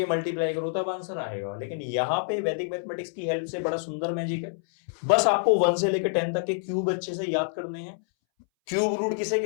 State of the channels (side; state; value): right; silent; 60 dB below the other